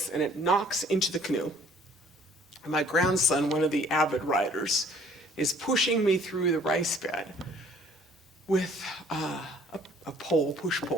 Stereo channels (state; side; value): normal; both; correlation 0.56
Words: and it knocks into the canoe. And my grandson, one of the avid riders, is pushing me through the rice bed with a pole, push